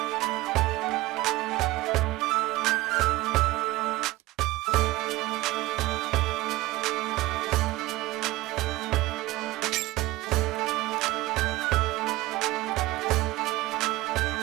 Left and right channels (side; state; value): left; quieter; 19.2 dB